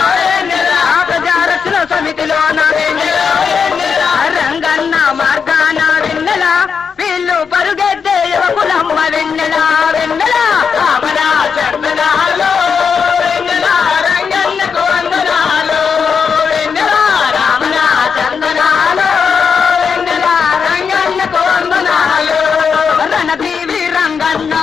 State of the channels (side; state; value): right; quieter; 6.2 dB